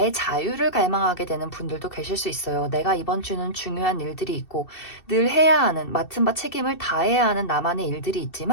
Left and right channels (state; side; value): late; right; 2.7 ms